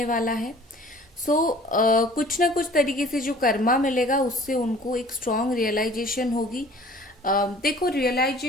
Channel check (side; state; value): both; normal; correlation 0.49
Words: वाला है। सो कुछ ना कुछ तरीके से जो कर्मा मिलेगा उससे उनको एक स्ट्रॉन्ग रियलाइजेशन होगी। देखो,